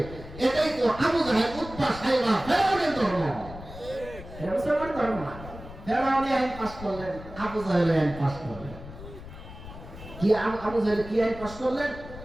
এটাই তো আবু জাহেল, উতবা, সাইবা, ফেরাউনের ধর্ম। মুসলমান ধর্ম না। ফেরাউনি আইন পাস করলেন, আবু জাহেল আইন পাস করলেন। কি আবু জাহেল কি আইন পাস করলেন?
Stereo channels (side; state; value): left; noise; rumble, 14 dB below the sound